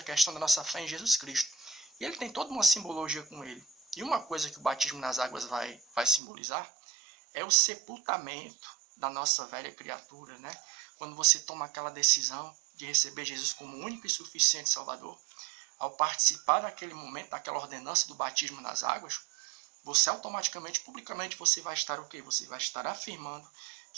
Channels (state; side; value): drops out; left; at 6.2 s